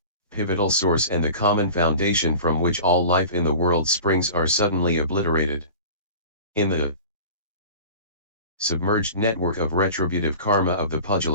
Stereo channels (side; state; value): both; inverted; correlation -0.38